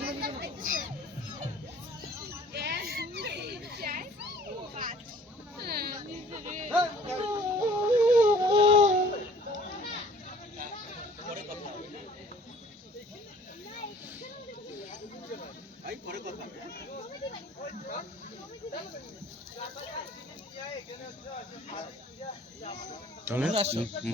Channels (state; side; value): normal; both; correlation 0.53